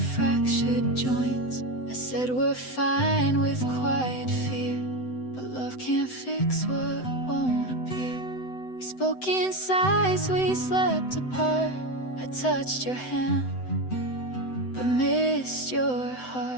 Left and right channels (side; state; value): right; late; 7.9 ms